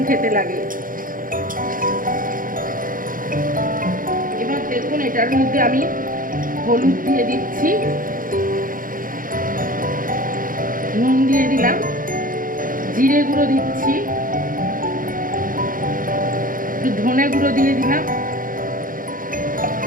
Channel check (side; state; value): left; late; 0.40 ms